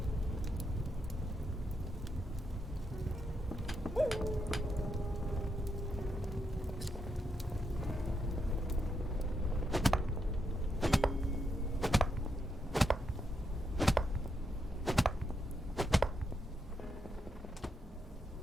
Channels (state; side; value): normal; both; correlation 0.81